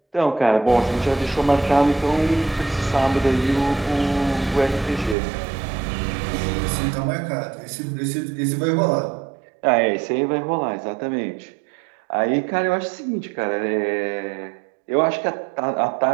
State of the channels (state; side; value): drops out; left; at 5.2 s